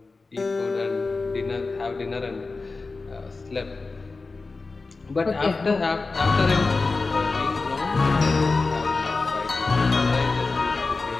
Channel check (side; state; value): right; quieter; 3.9 dB